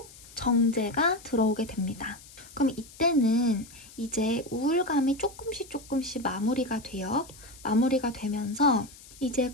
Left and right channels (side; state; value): left; noise; hiss, 20 dB below the sound